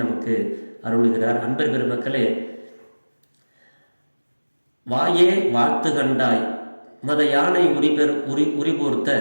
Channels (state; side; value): inverted; both; correlation -1.00